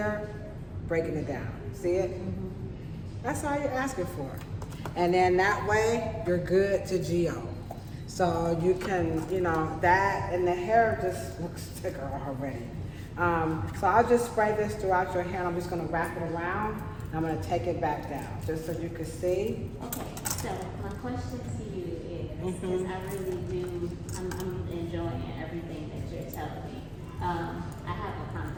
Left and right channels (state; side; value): identical; both; correlation 1.00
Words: breaking it down. See it? That's all you're asking for. And then that way, you're good to GO. So you can, that, and the hair just looks thicker already. So I'll just spray this throughout your hair, and I'm just gonna wrap it around, and I'm gonna take it back down, just so you can see. Okay, so my question to you is, because I really do, I'm enjoying everything that you're telling me. I have a